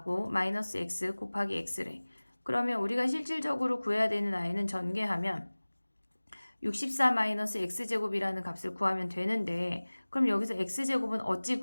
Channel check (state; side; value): inverted; both; correlation -1.00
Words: 마이너스 X 곱하기 X래. 그러면 우리가 실질적으로 구해야 되는 아이는 전개하면 64-x제곱이라는 값을 구하면 되는데 그럼 여기서 x제곱은 어찌